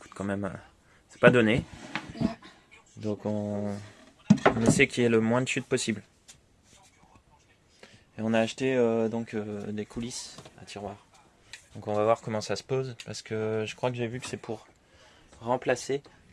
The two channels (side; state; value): both; identical; correlation 1.00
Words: quand même. C'est pas donné. Donc on essaie qu'il y ait le moins de chute possible. Et on a acheté des coulisses à tiroirs. Donc on va voir comment ça se pose, parce que je crois que j'ai vu que c'est pour remplacer.